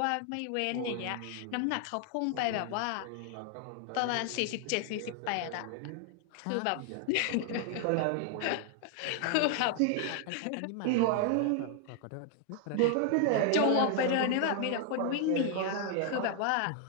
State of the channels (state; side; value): different; both; correlation 0.00